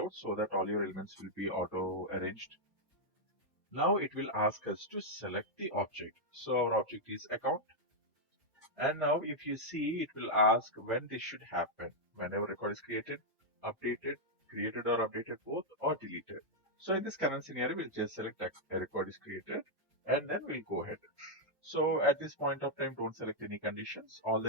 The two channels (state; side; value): normal; both; correlation -0.03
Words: so that all your elements will be auto arranged. Now it will ask us to select the object. So our object is account. And now if you see, it will ask when this should happen. Whenever record is created, updated, created or updated both, or deleted. So in this current scenario, we'll just select a record is created and then we'll go ahead. So at this point of time, don't select any conditions. All